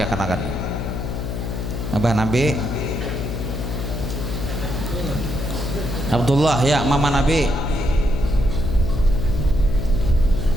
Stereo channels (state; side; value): noise; left; hum, 4 dB below the sound